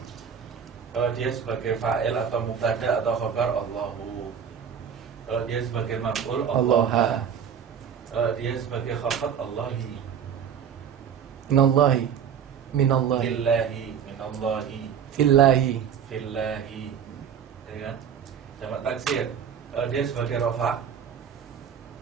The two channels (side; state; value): left; quieter; 8.0 dB